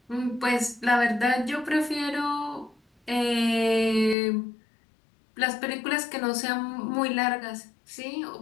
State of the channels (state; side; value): drops out; right; at 4.2 s